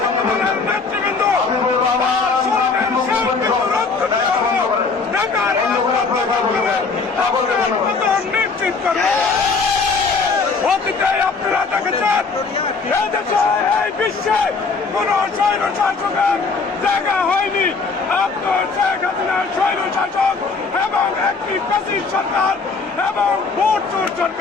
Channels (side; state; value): right; quieter; 4.6 dB